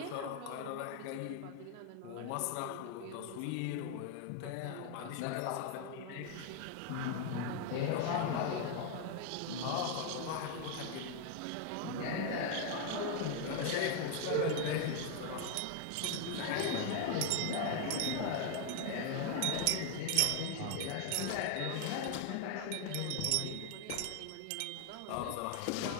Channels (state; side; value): different; both; correlation 0.01